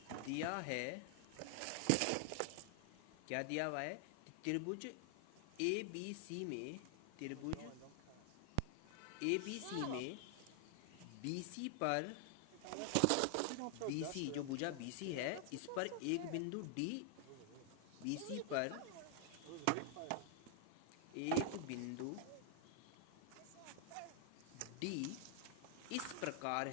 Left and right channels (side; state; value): both; different; correlation 0.00